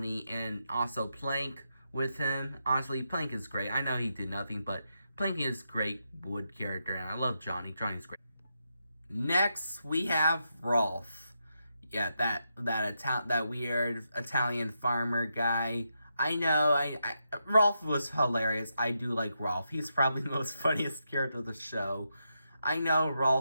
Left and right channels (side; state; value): both; inverted; correlation -0.84